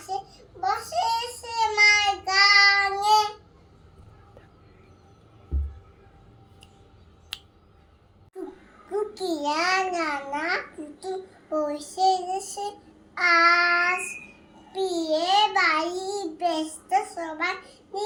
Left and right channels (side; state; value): both; identical; correlation 1.00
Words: বসে সে মার গানে। টুকিয়া নানা পুতুল বসে দেশে আস, বিয়ে বাড়ি ব্যস্ত সবাই